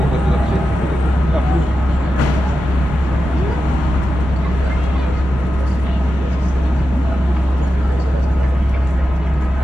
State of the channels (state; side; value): normal; both; correlation 0.91